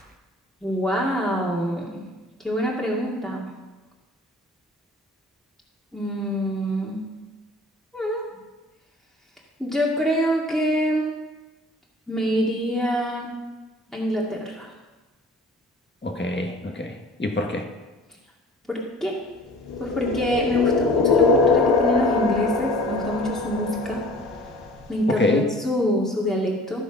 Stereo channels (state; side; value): normal; both; correlation 0.47